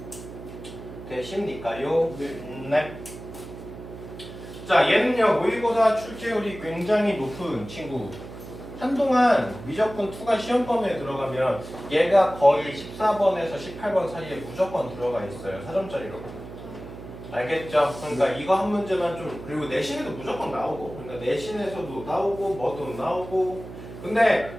되십니까요? 네. 자, 얘는요. 모의고사 출제율이 굉장히 높은 친구. 한동안 미적분 2가 시험 범위에 들어가면 얘가 거의 14번에서 18번 사이에 무조건 들어가 있어요. 4점짜리로. 알겠죠? 그러니까 이거 한 문제만 좀 그리고 내신에도 무조건 나오고 그러니까 내신에서도 나오고 뭐도 나오고 근데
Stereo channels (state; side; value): noise; right; hum, 13 dB below the sound